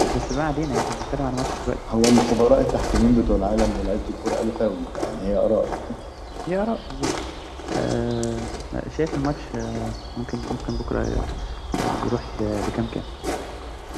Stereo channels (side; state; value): both; identical; correlation 1.00